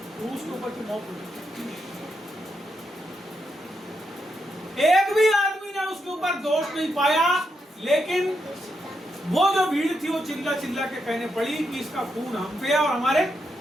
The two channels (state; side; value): normal; both; correlation 0.82